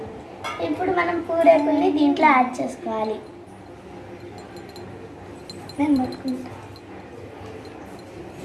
ఇప్పుడు మనం పూరేకుల్ని దీంట్లో యాడ్ చేసుకోవాలి. నేను పట్టుకుంటా.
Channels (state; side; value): identical; both; correlation 1.00